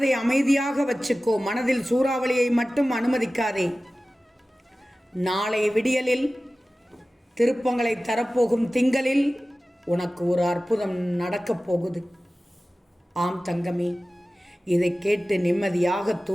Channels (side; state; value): both; normal; correlation 0.96